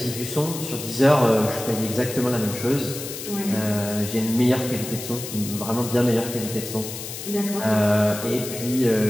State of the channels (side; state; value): left; noise; hiss, 9 dB below the sound